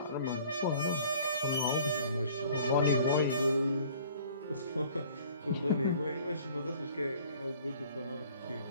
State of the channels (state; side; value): inverted; both; correlation -0.52